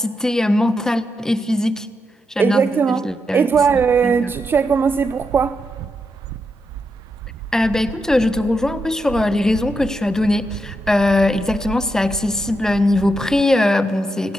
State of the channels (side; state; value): both; normal; correlation 0.84